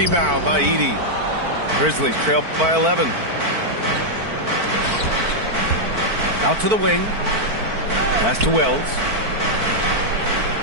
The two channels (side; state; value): left; late; 4.5 ms